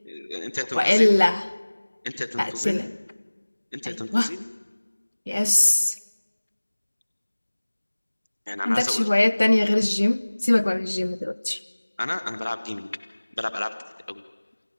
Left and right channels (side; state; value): both; inverted; correlation -1.00